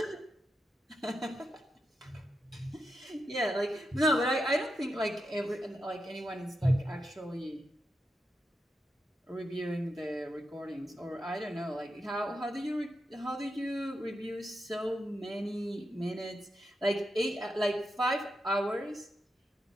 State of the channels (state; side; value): normal; both; correlation 0.86